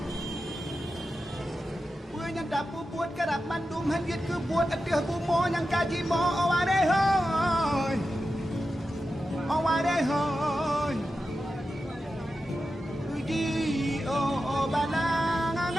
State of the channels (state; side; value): normal; both; correlation 0.91